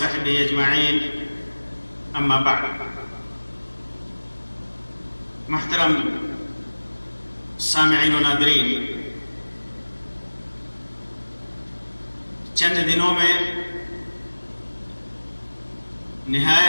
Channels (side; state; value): both; inverted; correlation -1.00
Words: أجمعين أما بعد. محترم سامعین و ناظرین، چند دنوں میں